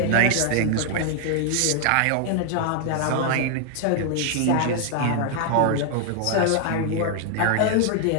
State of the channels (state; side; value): different; both; correlation 0.00